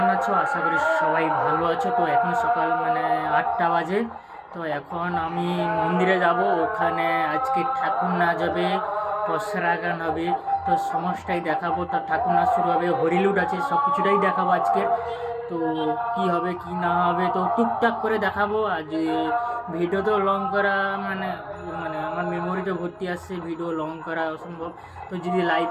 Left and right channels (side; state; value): both; identical; correlation 1.00